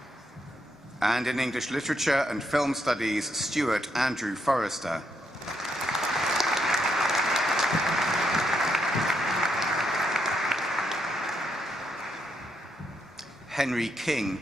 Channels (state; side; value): normal; both; correlation 0.78